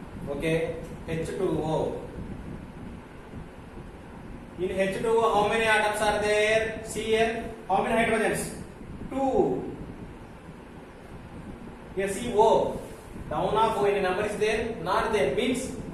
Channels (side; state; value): both; identical; correlation 1.00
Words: Okay, H2O. In H2O, how many atoms are there? See here, how many hydrogens? 2. Here see O. Down of O, any number is there? Not there. Means